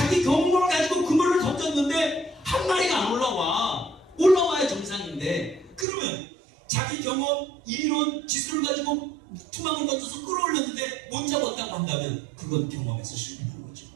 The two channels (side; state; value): left; drops out; at 5.9 s